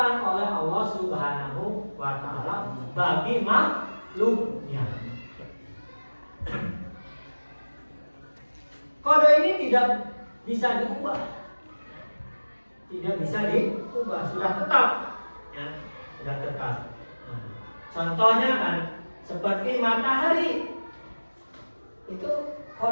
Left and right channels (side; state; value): both; inverted; correlation -1.00